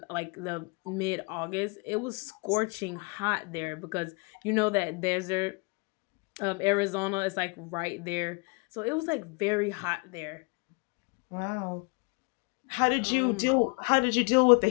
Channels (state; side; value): quieter; right; 32.1 dB